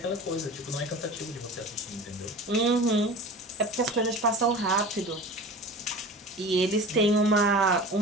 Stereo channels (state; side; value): normal; both; correlation 0.36